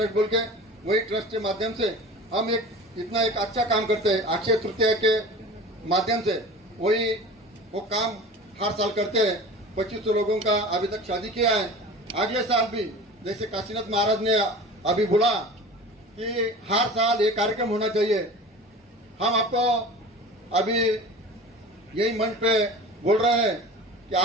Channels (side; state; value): both; normal; correlation 0.38